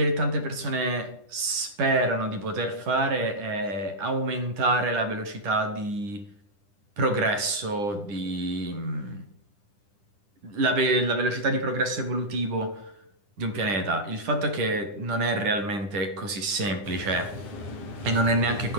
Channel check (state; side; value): late; left; 10 ms